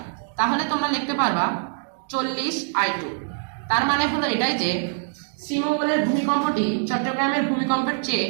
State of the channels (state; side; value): silent; left; digital silence